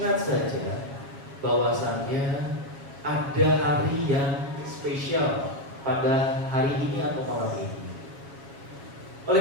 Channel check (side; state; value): left; late; 7.3 ms